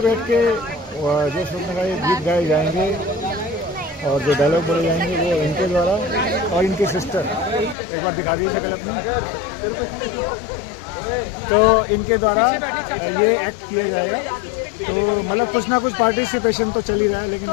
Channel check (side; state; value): right; drops out; at 7.8 s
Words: के जो शूर्पणखा के गीत गाए जाएंगे और जो डायलॉग बोले जाएंगे वो इनके द्वारा और इनके सिस्टर, एक बार दिखा दीजिए पहले अपना, तो इनके द्वारा ये एक्ट किया जाएगा। तो मतलब कुछ ना कुछ पार्टिसिपेशन तो चल ही रहा है, लेकिन